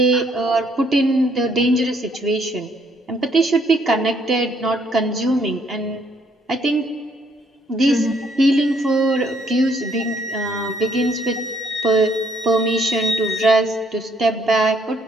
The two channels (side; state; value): both; normal; correlation 0.67